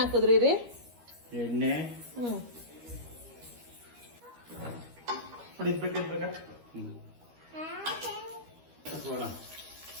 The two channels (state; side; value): late; left; 13 ms